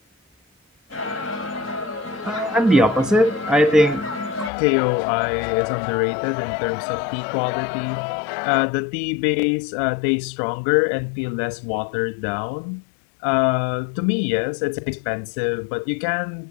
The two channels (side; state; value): right; drops out; at 4.5 s